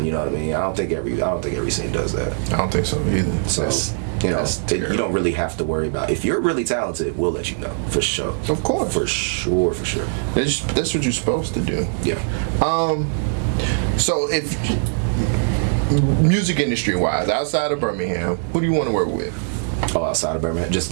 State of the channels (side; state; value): left; silent; digital silence